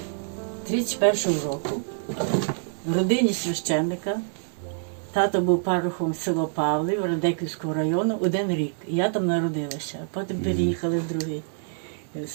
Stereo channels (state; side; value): silent; left; 61 dB below the other